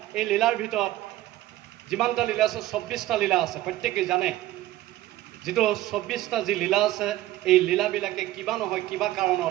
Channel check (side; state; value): left; quieter; 15.6 dB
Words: এই লীলাৰ ভিতৰত যিমানটা লীলা আছে, 24টা লীলা আছে। প্ৰত্যেকেই জানে যিটো 24টা যি লীলা আছে, এই লীলাবিলাকে কিবা নহয় কিবা